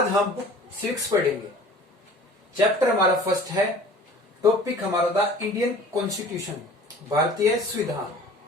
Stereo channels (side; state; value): both; normal; correlation 0.46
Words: हम बुक 6 पढ़ेंगे। चैप्टर हमारा फर्स्ट है। टॉपिक हमारा द इंडियन कॉन्स्टिट्यूशन, भारतीय संविधान।